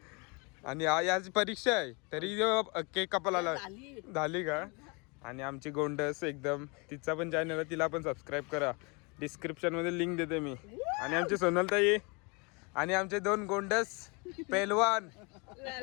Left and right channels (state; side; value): quieter; right; 30.4 dB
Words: आणि याची परीक्षा आहे तरी केक कापायला झाली का. आणि आमची गोंडस एकदम तिचा पण चॅनल आहे. तिला पण सबस्क्राईब करा. डिस्क्रिप्शन मध्ये लिंक देते मी. आणि आमची सोनलताई आणि आमचे 2 गोंडस पेलवान.